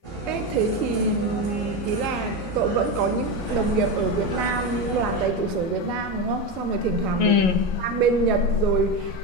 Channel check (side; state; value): right; late; 11 ms